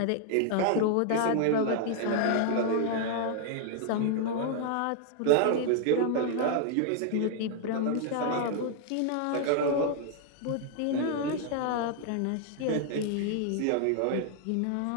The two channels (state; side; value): different; both; correlation 0.00